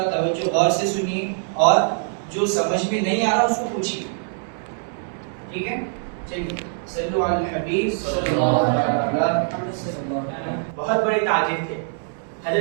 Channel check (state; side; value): silent; left; 63 dB below the other